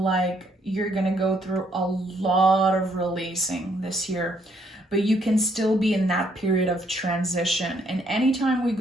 you're going to go through a lot of releasing this year, but you can still be in that period of transition. And anytime we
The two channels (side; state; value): both; normal; correlation 0.70